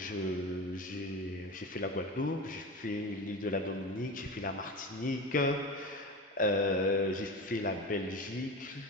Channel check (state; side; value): normal; both; correlation 0.27